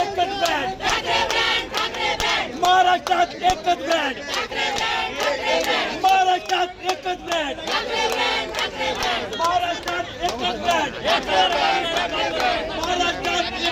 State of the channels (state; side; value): identical; both; correlation 1.00